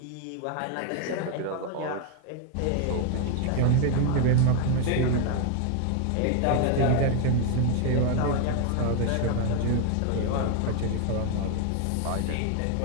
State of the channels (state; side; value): different; both; correlation 0.00